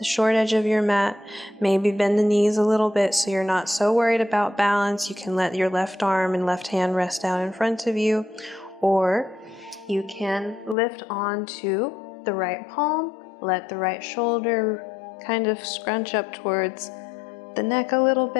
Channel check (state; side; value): drops out; right; at 10.8 s